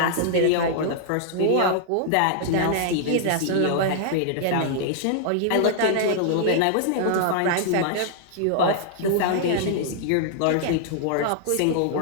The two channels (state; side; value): different; both; correlation -0.01